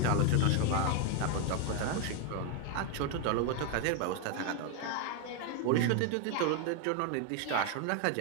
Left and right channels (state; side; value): different; both; correlation 0.01